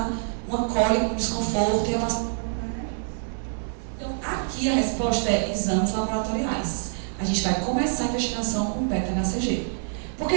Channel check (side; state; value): left; silent; digital silence